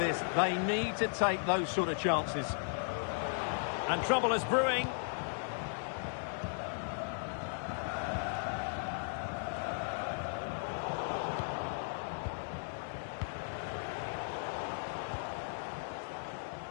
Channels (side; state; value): right; silent; digital silence